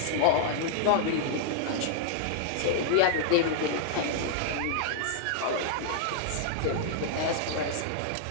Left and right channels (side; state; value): both; different; correlation -0.01